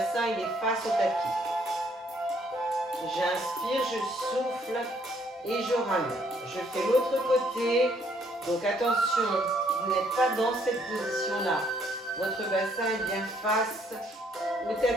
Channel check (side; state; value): both; normal; correlation 0.67